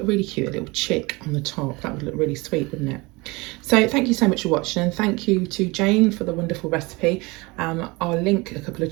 look really cute? A little chick on the top. That would look really sweet, wouldn't it? So thank you so much for watching, and thank you to Jane for the wonderful recipe. I'll link a couple of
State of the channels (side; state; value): left; quieter; 24.6 dB